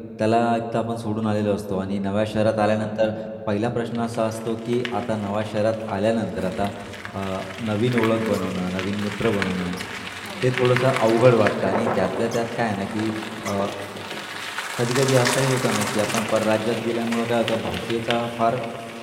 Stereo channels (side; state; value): both; identical; correlation 1.00